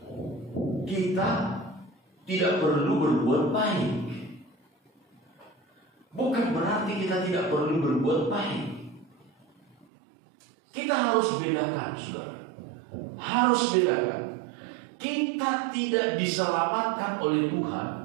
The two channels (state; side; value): drops out; left; at 9.9 s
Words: kita tidak perlu berbuat baik. Bukan berarti kita tidak perlu berbuat baik. Kita harus bedakan, saudara. Harus bedakan. Kita tidak diselamatkan oleh